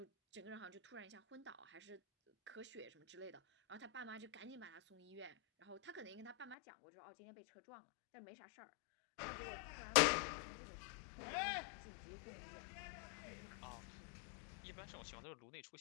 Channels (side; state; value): right; drops out; at 6.6 s